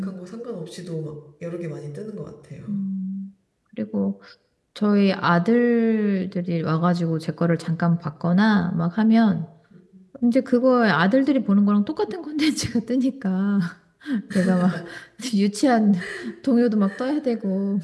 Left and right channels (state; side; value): identical; both; correlation 1.00